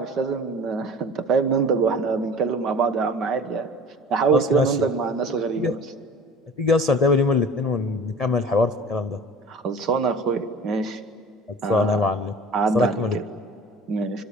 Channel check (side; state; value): both; normal; correlation 0.42